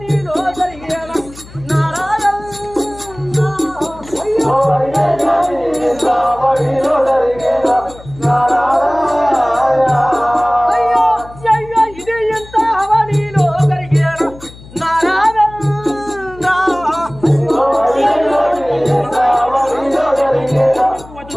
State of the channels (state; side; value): noise; left; hum, 19 dB below the sound